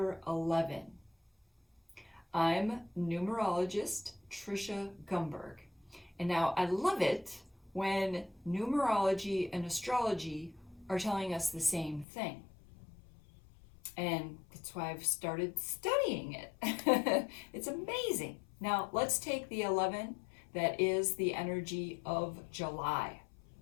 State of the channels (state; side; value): drops out; right; at 12.1 s